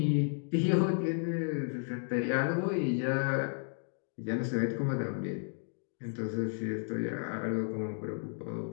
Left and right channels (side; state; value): right; silent; 56 dB below the other